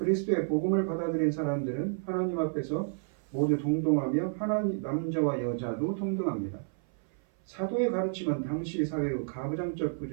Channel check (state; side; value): silent; left; 56 dB below the other